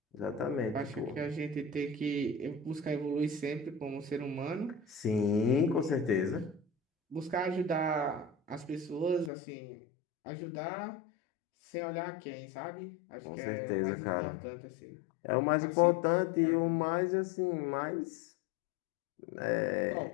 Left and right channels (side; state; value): right; drops out; at 9.3 s